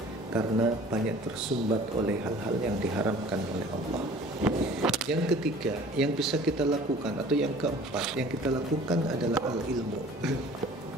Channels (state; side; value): normal; both; correlation 0.48